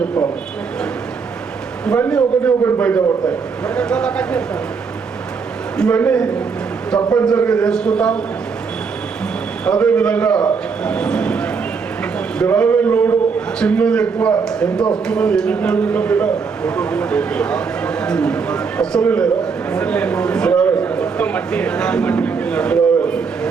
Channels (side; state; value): left; quieter; 5.4 dB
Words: చెప్పాలి. ఇవన్నీ ఒకటి బయటపడతాయి. ఇవన్నీ తప్పనిసరిగా చేసుకుంటాం. అదేవిధంగా గ్రామీణ రోడ్డు చిన్నది ఎక్కువ ఎంత వస్తున్నది, 8 కిలోమీటర్ల మీద అస్సలే లేదా